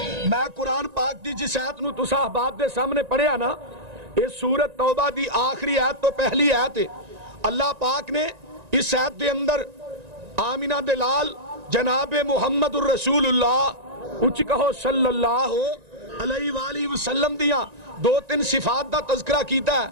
میں قرآن پاک دی جس آیت نو تسا احباب دے سامنے پڑھیا نا، اس سورت توبہ دی آخری آیت تو پہلی آیت ہے۔ اللہ پاک نے اس آیت دے اندر آمینہ دلال جناب محمد الرسول اللہ اچھی کہو صلی اللہ علیہ وآلہ وسلم دیاں دو تین صفات دا تذکرہ کیتا ہے،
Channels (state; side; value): late; left; 1.9 ms